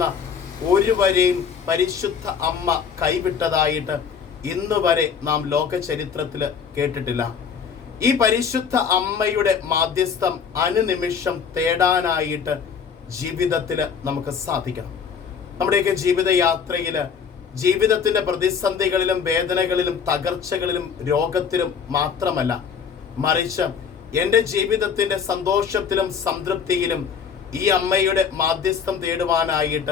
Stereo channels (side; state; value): right; quieter; 6.6 dB